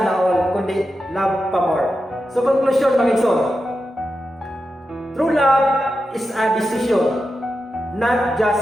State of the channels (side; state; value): both; normal; correlation 0.89